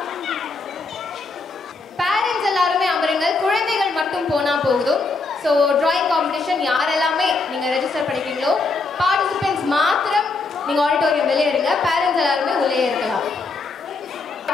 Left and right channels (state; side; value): quieter; right; 3.9 dB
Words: பேரண்ட்ஸ் எல்லாருமே அமருங்கள், குழந்தைகள் மட்டும் போனா போகுதும். ஸோ டிராயிங் காம்படிஷன் யாரெல்லாமே நீங்க ரெஜிஸ்டர் பண்ணிக்கிறீங்களோ பார்ட்டிசிபென்ட்ஸ் மாத்திரம் நீங்க ஆடிட்டோரியம் வெளியே இருங்க, பேரண்ட்ஸ் எல்லாருமே உள்ளே இருக்கலாம்.